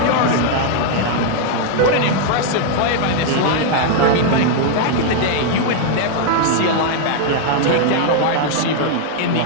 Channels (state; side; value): different; both; correlation 0.00